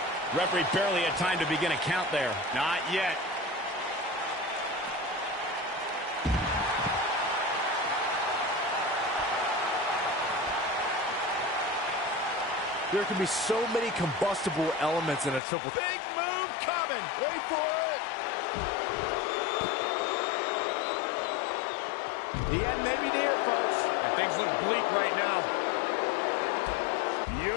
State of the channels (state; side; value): drops out; right; at 15.4 s